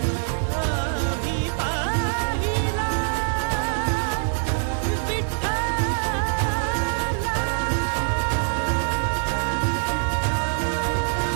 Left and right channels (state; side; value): silent; left; digital silence